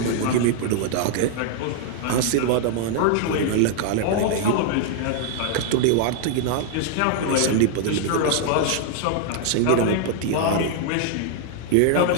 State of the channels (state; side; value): different; both; correlation 0.00